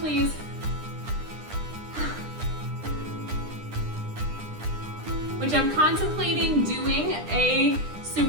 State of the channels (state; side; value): late; left; 9.9 ms